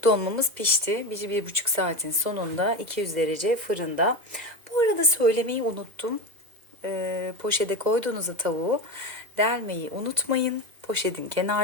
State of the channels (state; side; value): late; left; 2.0 ms